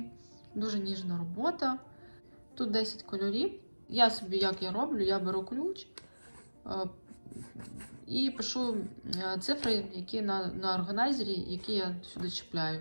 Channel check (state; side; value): inverted; both; correlation -1.00